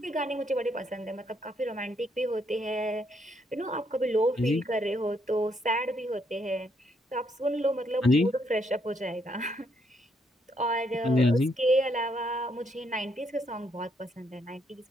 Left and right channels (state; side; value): normal; both; correlation 0.73